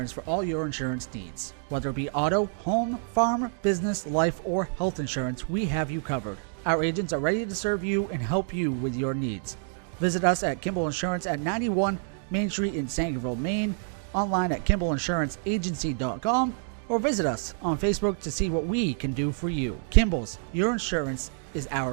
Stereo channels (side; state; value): left; silent; 60 dB below the other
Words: for all your insurance needs. Whether it be auto, home, farm, business, life, or health insurance, we have you covered. Our agents are ready to serve you and help you with your needs. Visit us at Kimball Insurance at 91 Main Street in Sangerville, Maine, online at KimballInsuranceAgency.com, or visit us on Facebook to see what we can do for you. Kimball's, your insurance is